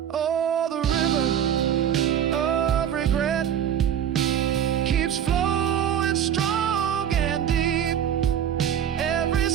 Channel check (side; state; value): left; quieter; 9.4 dB